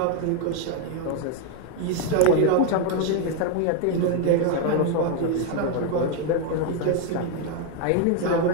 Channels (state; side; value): different; both; correlation 0.01